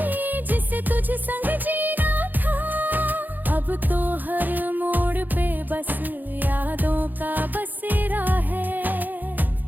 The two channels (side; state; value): left; late; 0.086 ms